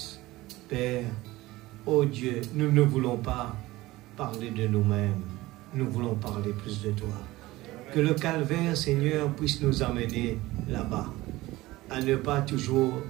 Père, oh Dieu, nous ne voulons pas parler de nous-mêmes. Nous voulons parler plus de toi. Que le calvaire, Seigneur, puisse nous amener là-bas. À ne pas toujours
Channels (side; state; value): left; quieter; 18.6 dB